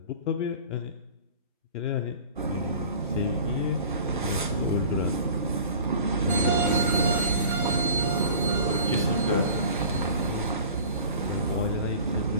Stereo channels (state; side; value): inverted; both; correlation -0.42